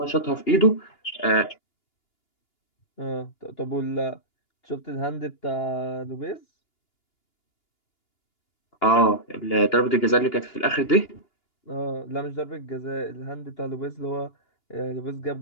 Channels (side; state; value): right; late; 2.9 ms